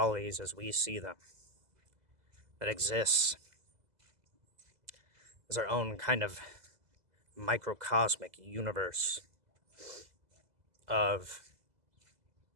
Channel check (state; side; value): late; left; 2.0 ms